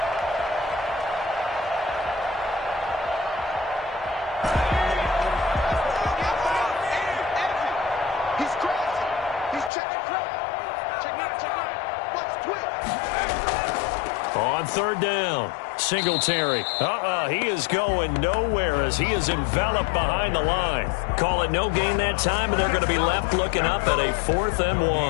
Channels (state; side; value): drops out; right; at 9.7 s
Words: On 3rd down, Singletary. He is going nowhere as he is enveloped behind the line. Call it no gain that time, and they're going to be left looking up at a 4th and 1.